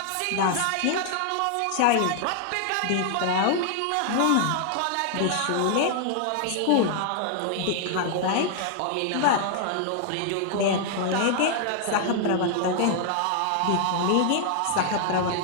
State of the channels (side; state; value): both; different; correlation 0.00